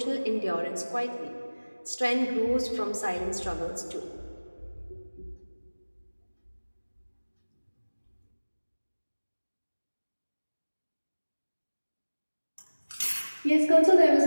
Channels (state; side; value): inverted; both; correlation -1.00